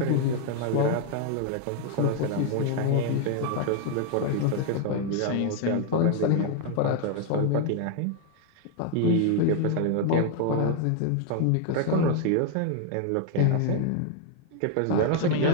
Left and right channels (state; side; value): different; both; correlation 0.00